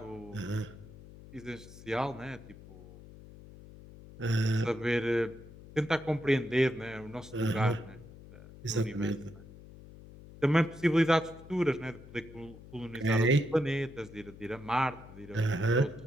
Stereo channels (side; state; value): left; noise; hum, 18 dB below the sound